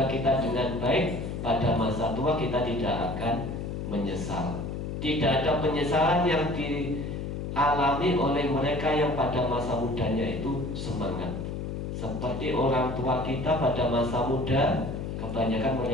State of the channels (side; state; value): left; noise; hum, 5 dB below the sound